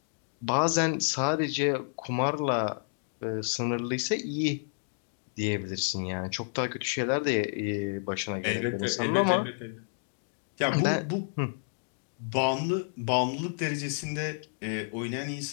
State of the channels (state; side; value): silent; right; digital silence